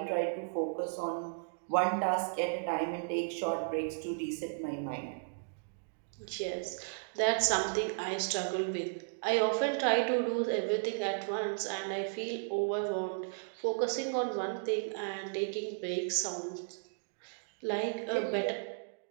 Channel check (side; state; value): left; silent; digital silence